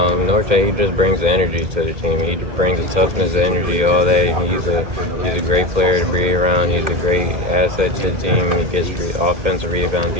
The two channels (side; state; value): left; late; 2.1 ms